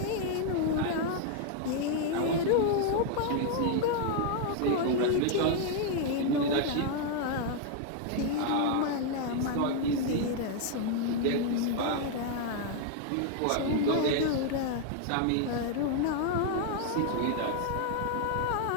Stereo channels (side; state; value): both; different; correlation 0.00